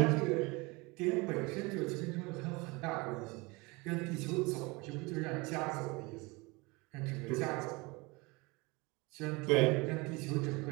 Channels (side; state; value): left; quieter; 25.4 dB